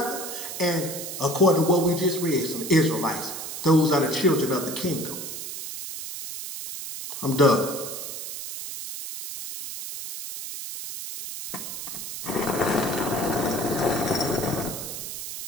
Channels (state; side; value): noise; right; hiss, 7 dB below the sound